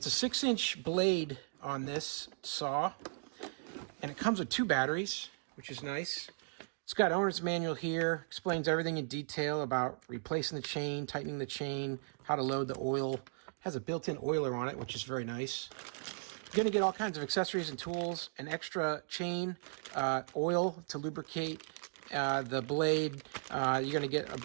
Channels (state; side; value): silent; left; digital silence